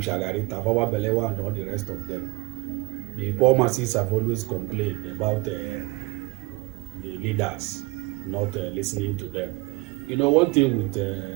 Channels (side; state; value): left; quieter; 23.6 dB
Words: Shagari, Tafawa Balewa, and all the rest of them, the poor masses have always complained about the leaders not listening to them. You know, one thing with